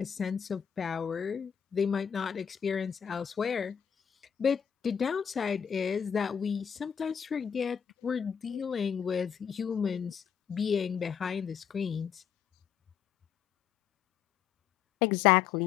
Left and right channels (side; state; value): right; quieter; 7.8 dB